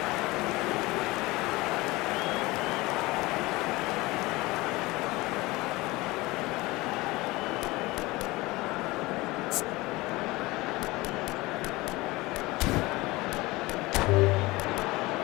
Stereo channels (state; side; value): quieter; right; 21.2 dB